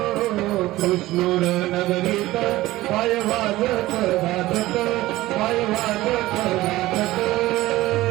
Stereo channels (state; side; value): quieter; left; 17.2 dB